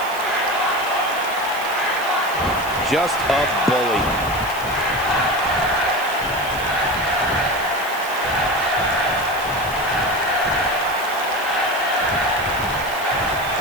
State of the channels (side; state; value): right; noise; hiss, 15 dB below the sound